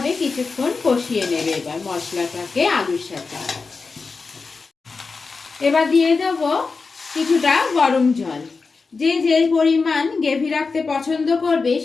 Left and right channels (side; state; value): right; quieter; 4.4 dB